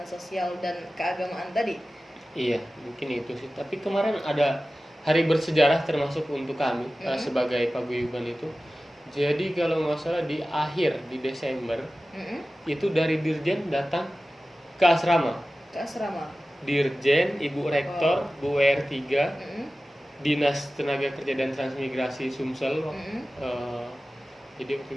sosial dan keagamaan tadi. Iya, mungkin itu sih. Tapi kemarin ada hari bersejarah termasuk untuk kami sebagai paguyuban itu. Jadi kalau nggak salah di Desember itu dari Dirjen datang ke asrama. Dirjen, Ibu Rektor, Bu WR3, Dinas Tenaga Kerja dan Transmigrasi Sumsel. Jadi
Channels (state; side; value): normal; both; correlation 0.96